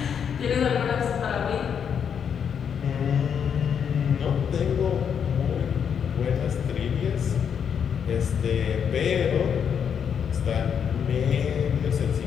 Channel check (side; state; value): right; quieter; 7.6 dB